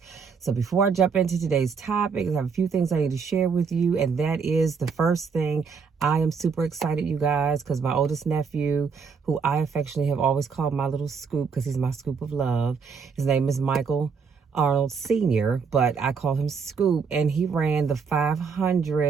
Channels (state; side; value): quieter; left; 5.7 dB